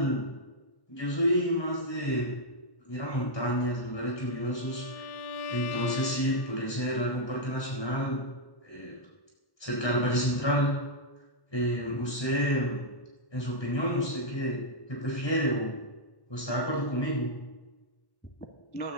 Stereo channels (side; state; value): right; late; 1.1 ms